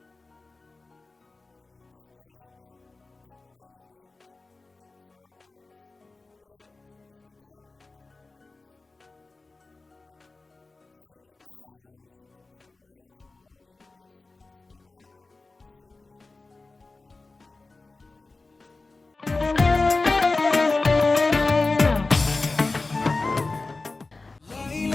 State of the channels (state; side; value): quieter; right; 3.5 dB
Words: Okay, it's boiling now. What do you think? Smells nice. And yeah, looks good too. It's the garlic. I know, right? So we're just going to allow it to cook for a while, for all the ingredients to cook together, and we'll be serving it. And you let me know your verdict.